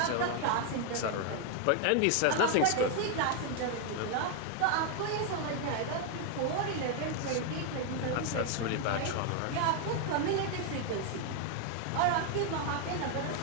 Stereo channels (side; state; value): both; different; correlation 0.01